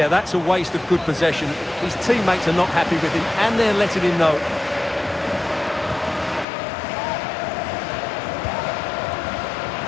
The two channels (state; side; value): drops out; right; at 6.5 s